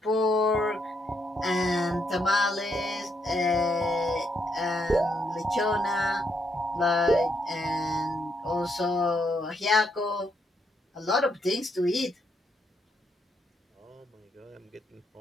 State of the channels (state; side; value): normal; both; correlation 0.77